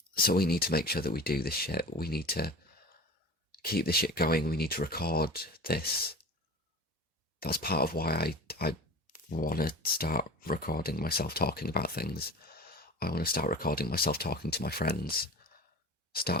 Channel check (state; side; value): normal; both; correlation 0.34